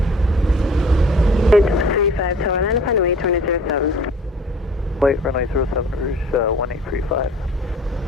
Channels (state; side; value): normal; both; correlation 0.49